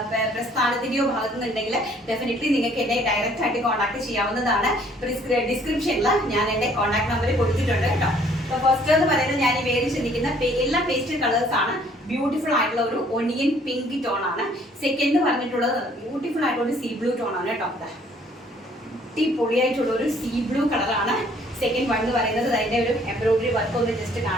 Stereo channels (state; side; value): normal; both; correlation 0.60